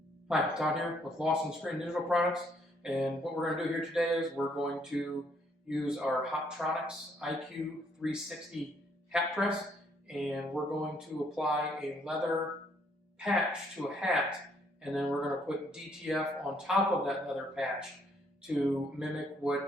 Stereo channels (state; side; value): normal; both; correlation 0.68